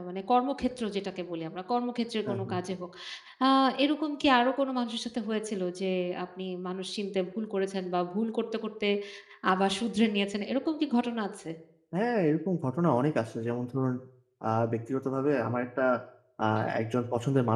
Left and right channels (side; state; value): both; identical; correlation 1.00